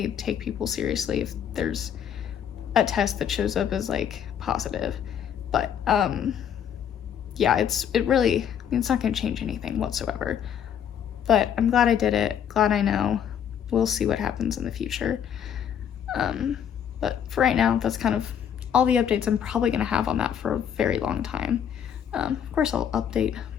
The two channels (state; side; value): quieter; right; 8.7 dB